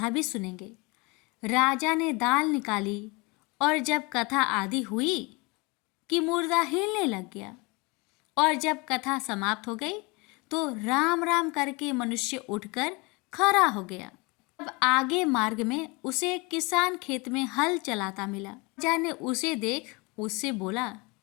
भी सुनेंगे। राजा ने दाल निकाली और जब कथा आदि हुई कि मुर्दा हिलने लग गया और जब कथा समाप्त हो गई तो राम राम करके मनुष्य उठकर खड़ा हो गया। अब आगे मार्ग में उसे एक किसान खेत में हल चलाता मिला। राजा ने उसे देख उससे बोला,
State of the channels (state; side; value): quieter; right; 27.2 dB